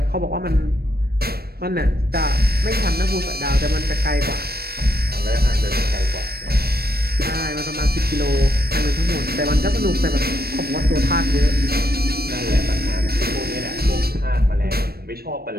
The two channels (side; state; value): left; late; 0.45 ms